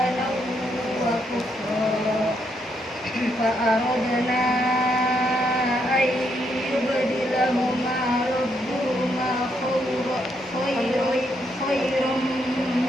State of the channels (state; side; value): normal; both; correlation 0.76